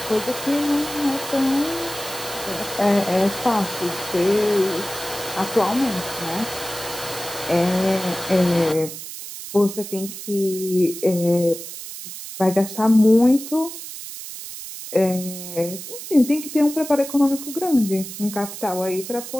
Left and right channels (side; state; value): right; noise; hiss, 10 dB below the sound